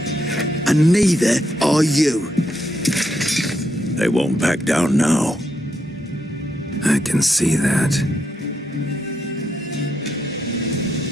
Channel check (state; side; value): normal; both; correlation 0.80